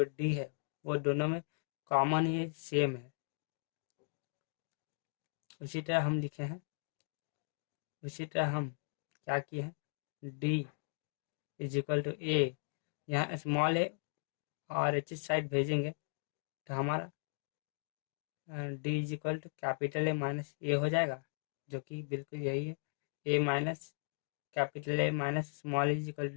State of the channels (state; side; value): silent; right; digital silence